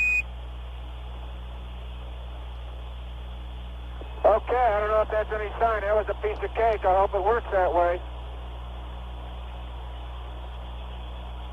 Okay, I don't know if that's any sign. That was a piece of cake. I hope it works that way.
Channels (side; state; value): both; identical; correlation 1.00